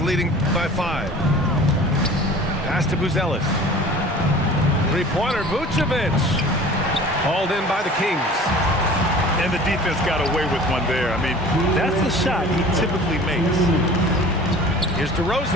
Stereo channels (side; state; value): both; normal; correlation 0.43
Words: leading by 5. Pass to Buzelis. 3-pointer, Vucevic. Hauled in by the Kings. And the defense got away with one there. I mean, that's a shot he typically makes. Here's